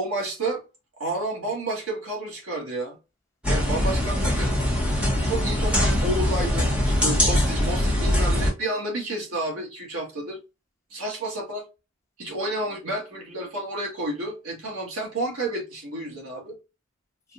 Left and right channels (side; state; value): both; normal; correlation 0.55